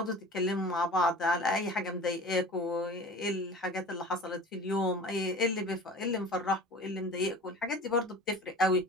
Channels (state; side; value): normal; both; correlation 0.40